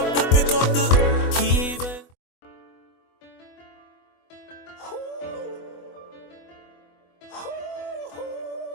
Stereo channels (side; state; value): right; late; 24 ms